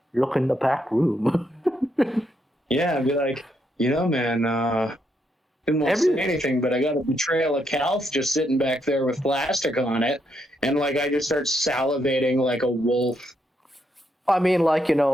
look in the back room. Yeah, I'd be like, man, didn't want to say anything, but I got a betrayal of Calth just sitting back there with plastic on it, and like I just start salivating like a wolf. I mean, like,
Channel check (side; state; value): both; normal; correlation 0.78